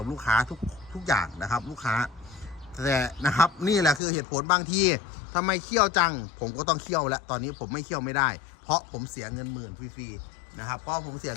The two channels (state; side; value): drops out; right; at 4.0 s